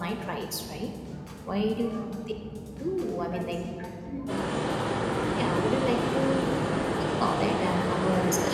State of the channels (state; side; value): identical; both; correlation 1.00